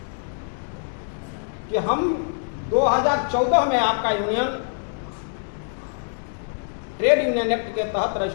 कि हम 2014 में आपका यूनियन ट्रेड यूनियन एक्ट के तहत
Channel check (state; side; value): silent; right; digital silence